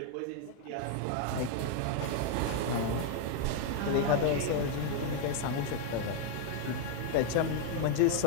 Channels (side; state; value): both; different; correlation 0.00